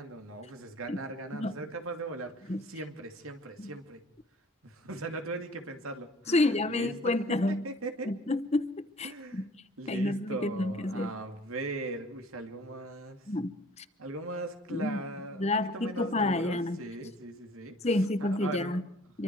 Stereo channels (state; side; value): normal; both; correlation 0.52